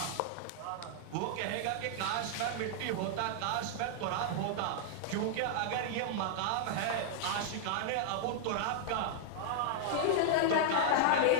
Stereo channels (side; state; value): both; different; correlation -0.01